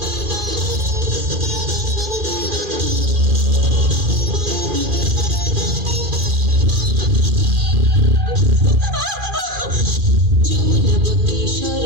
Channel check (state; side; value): late; left; 2.4 ms